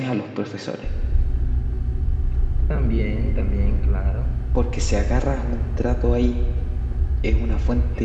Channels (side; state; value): both; identical; correlation 1.00